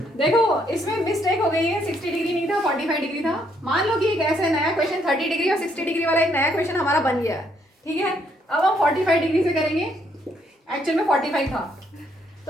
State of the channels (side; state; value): both; normal; correlation 0.71